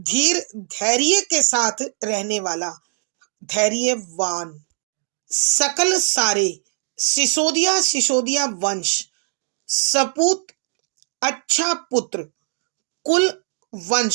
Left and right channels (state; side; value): silent; left; digital silence